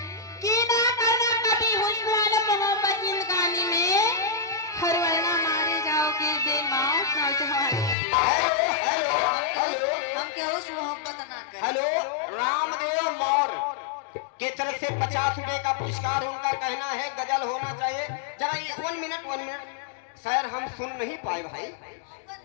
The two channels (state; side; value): drops out; right; at 8.0 s